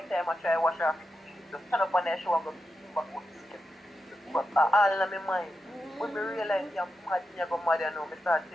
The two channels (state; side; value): normal; both; correlation 0.89